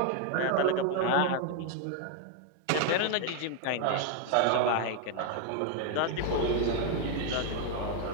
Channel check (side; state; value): both; different; correlation 0.01